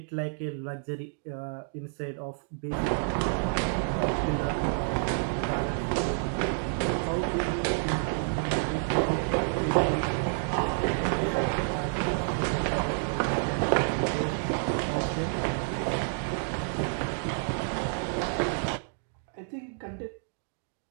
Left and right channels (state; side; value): silent; left; digital silence